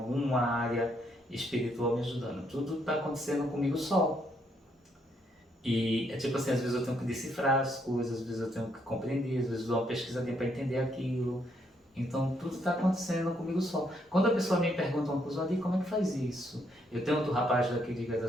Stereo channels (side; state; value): both; normal; correlation 0.73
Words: área espiritual me ajudando. Tudo está acontecendo comigo só. E é tipo assim, às vezes eu tenho que decifrar as coisas, às vezes eu tenho que compreender, às vezes eu dou uma pesquisadinha para entender aquilo. Então tudo está acontecendo comigo só. Quando a pessoa me pergunta uma coisa, Adi, como é que faz isso? Eu tenho outro rapaz daqui de